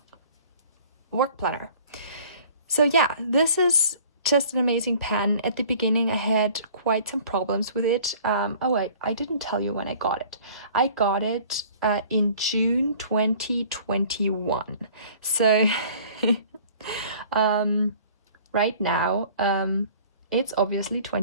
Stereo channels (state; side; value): inverted; both; correlation -0.50